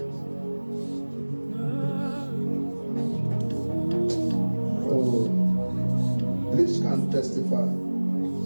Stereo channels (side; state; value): both; inverted; correlation -1.00